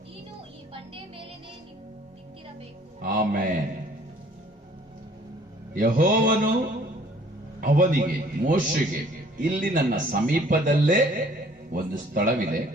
ನೀನು ಈ ಬಂಡೆ ಮೇಲೆನೇ ನಿಂತಿರಬೇಕು. ಆಮೆನ್. ಯೆಹೋವನು ಅವನಿಗೆ, ಮೋಶೆಗೆ, ಇಲ್ಲಿ ನನ್ನ ಸಮೀಪದಲ್ಲೇ ಒಂದು ಸ್ಥಳವಿದೆ,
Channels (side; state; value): both; normal; correlation 0.56